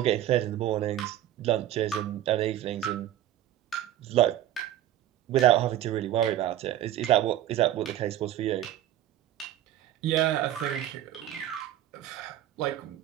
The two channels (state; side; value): quieter; left; 12.5 dB